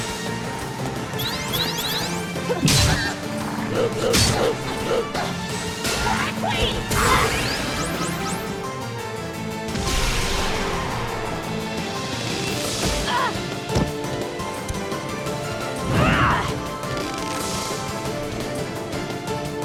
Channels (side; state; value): both; identical; correlation 1.00